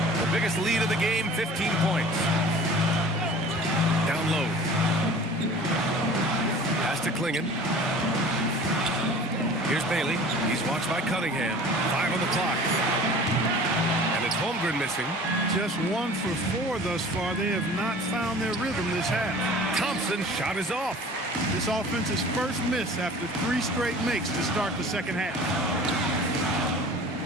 The biggest lead of the game, 15 points. Down low. Pass to Klingon. Here's Bailey. He's watched by Cunningham. 5 on the clock. And it's Holmgren missing. Just 1 for 4 thus far. They have not found their rhythm this half. Thompson's shot is off. This offense's first miss after 3 straight makes to start the second half.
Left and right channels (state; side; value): normal; both; correlation 0.44